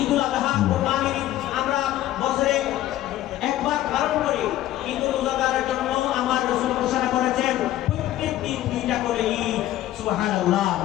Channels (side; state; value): right; quieter; 14.0 dB